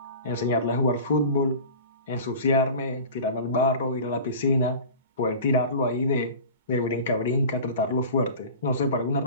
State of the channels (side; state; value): both; inverted; correlation -0.38